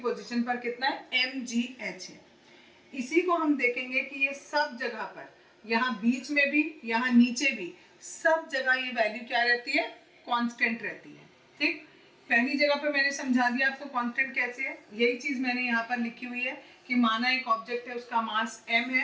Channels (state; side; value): identical; both; correlation 1.00